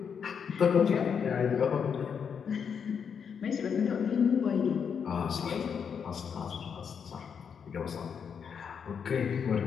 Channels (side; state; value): right; quieter; 7.0 dB